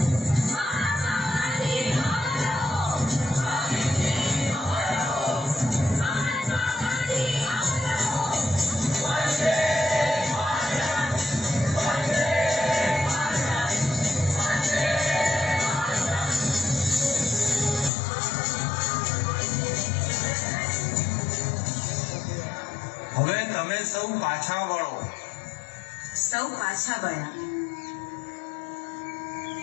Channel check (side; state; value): right; drops out; at 17.9 s